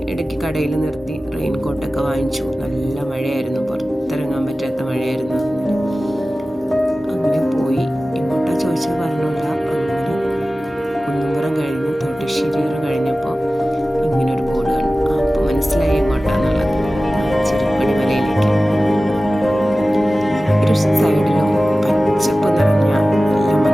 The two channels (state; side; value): normal; both; correlation 0.96